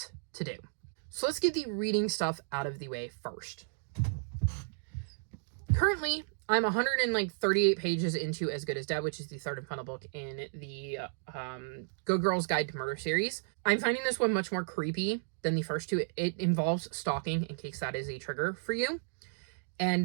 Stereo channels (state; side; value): silent; left; digital silence